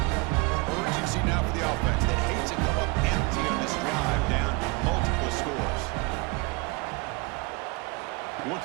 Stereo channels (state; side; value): quieter; left; 27.1 dB